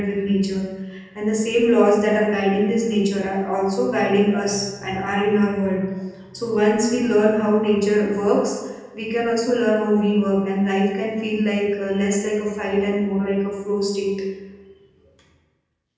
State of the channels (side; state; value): both; identical; correlation 1.00